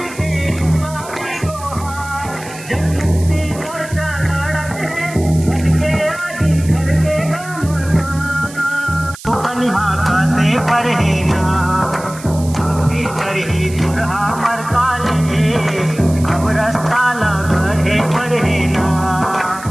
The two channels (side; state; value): right; noise; hiss, 16 dB below the sound